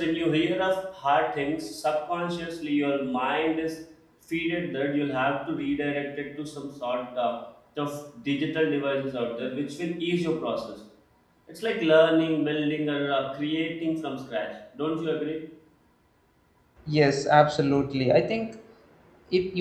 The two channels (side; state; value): both; identical; correlation 1.00